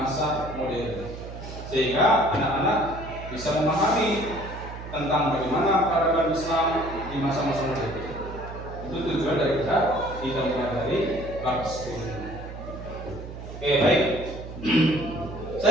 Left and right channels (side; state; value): right; noise; hum, 11 dB below the sound